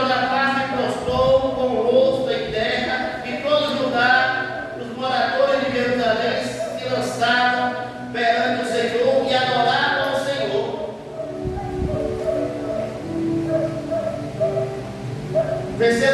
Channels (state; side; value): identical; both; correlation 1.00